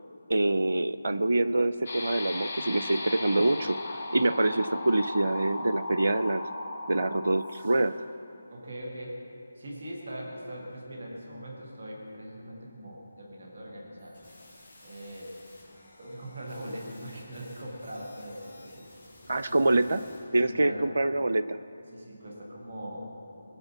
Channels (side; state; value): both; inverted; correlation -0.96